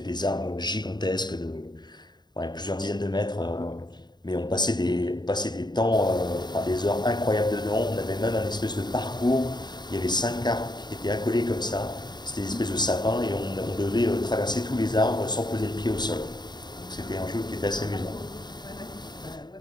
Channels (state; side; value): late; right; 0.21 ms